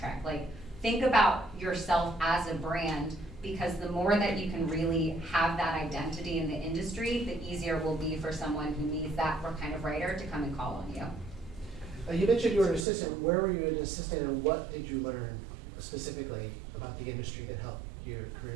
Like, think about yourself as a brand, because the more that you can really have that identity in the industry, the easier it will be for someone who needs that kind of writer to come and call on you. You mentioned you were an assistant. Where were you an assistant, and what did you learn specifically about the industry that helped your career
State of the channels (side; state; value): left; drops out; at 12.9 s